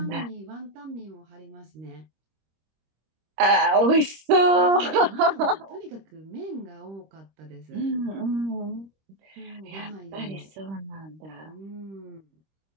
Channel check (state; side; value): late; left; 26 ms